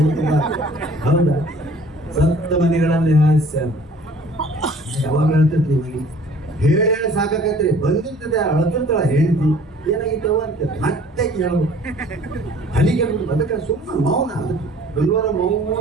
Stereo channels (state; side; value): normal; both; correlation 0.52